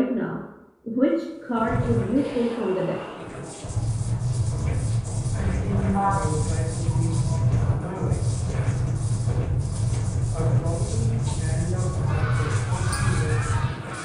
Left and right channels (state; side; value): identical; both; correlation 1.00